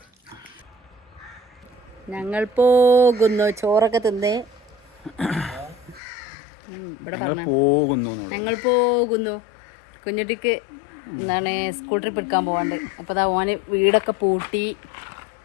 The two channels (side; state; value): right; drops out; at 6.0 s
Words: ഞങ്ങൾ പോകുന്നു. ചോറൊക്കെ തിന്ന് ഇവിടെ പറഞ്ഞു ഞങ്ങൾ പോകുന്നു. കുഞ്ഞുട്ടിക്ക് എന്താണ് സ്കൂൾ ട്രിപ്പ് എടുക്കാൻ പോവാണ്ട്. അപ്പോൾ അതാ ഓന് വീടൊക്കെ പൂട്ടി.